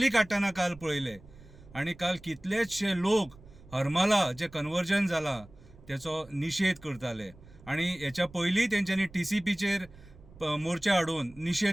काडटना काल पळयले आणि काल कितलेशे लोक हरमला जे कन्वर्जन जाला त्याचो निशेध करताले आणि हेच्या पयलीं तेंच्यांनी TCPचेर मोर्चा हाडून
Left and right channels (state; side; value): noise; right; rumble, 22 dB below the sound